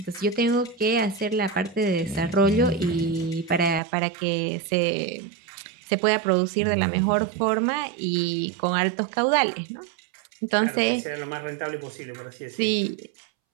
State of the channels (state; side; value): drops out; left; at 3.8 s